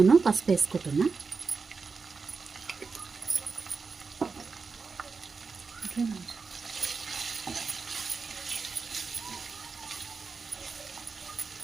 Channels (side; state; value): left; quieter; 4.8 dB